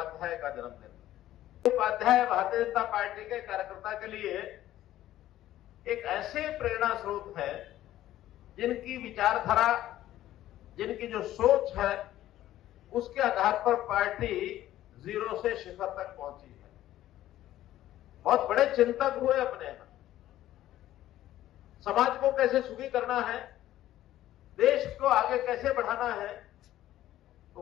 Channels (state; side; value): quieter; right; 13.7 dB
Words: का जन्मदिन। उपाध्याय भारतीय जनता पार्टी के कार्यकर्ता के लिए एक ऐसे प्रेरणा स्रोत है जिनकी विचारधारा, जिनकी जो सोच है, उसके आधार पर पार्टी जीरो से शिखर तक पहुंची है। बहुत बड़े चिंतक हुए अपने यहां। समाज को कैसे सुखी करना है, देश को आगे कैसे बढ़ाना है, तो